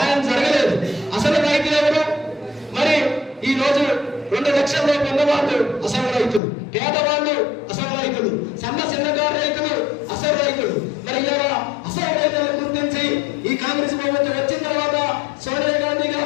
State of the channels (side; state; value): right; drops out; at 6.4 s